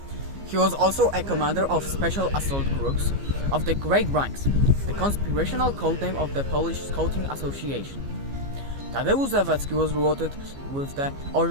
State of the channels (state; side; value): late; left; 15 ms